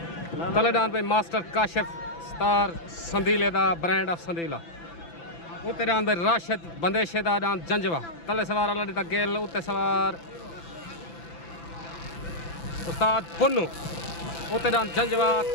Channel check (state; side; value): late; right; 5.9 ms